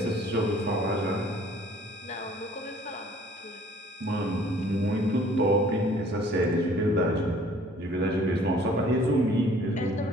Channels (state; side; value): normal; both; correlation 0.55